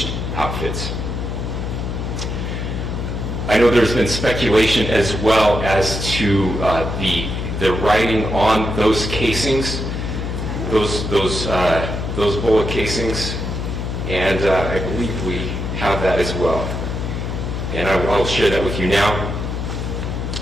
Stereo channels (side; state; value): left; noise; hum, 3 dB below the sound